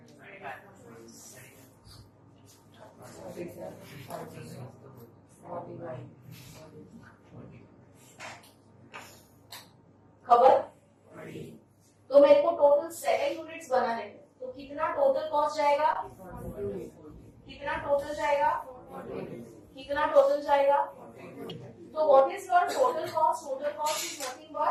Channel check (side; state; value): both; identical; correlation 1.00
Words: खबर? तो मेरे को टोटल 7 यूनिट्स बनाने हैं, तो कितना टोटल कॉस्ट जाएगा? कितना टोटल जाएगा? कितना टोटल जाएगा? तो what is your total cost? Total cost is nothing